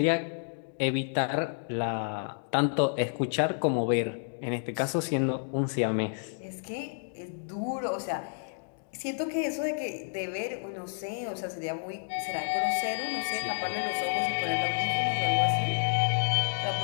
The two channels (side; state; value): right; silent; digital silence